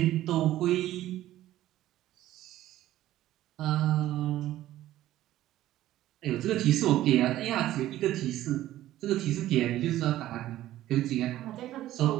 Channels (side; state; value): left; quieter; 14.2 dB